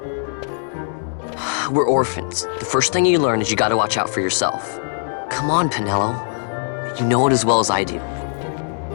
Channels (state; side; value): silent; right; digital silence